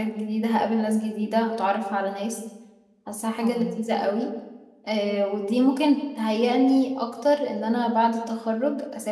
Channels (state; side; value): identical; both; correlation 1.00